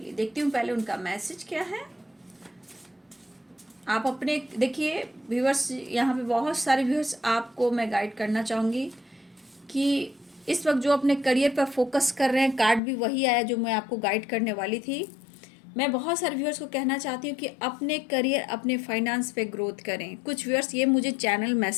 देखती हूँ पहले उनका मैसेज क्या है। आप अपने देखिए व्यूअर्स, यहाँ पे बहुत सारे व्यूअर्स आपको मैं गाइड करना चाहूँगी कि इस वक्त जो अपने करियर पर फोकस कर रहे हैं, कार्ड भी वही आया जो मैं आपको गाइड करने वाली थी। मैं बहुत सारे व्यूअर्स को कहना चाहती हूँ कि अपने करियर, अपने फाइनेंस पे ग्रोथ करें। कुछ व्यूअर्स, ये मुझे चैनल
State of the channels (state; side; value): drops out; right; at 12.8 s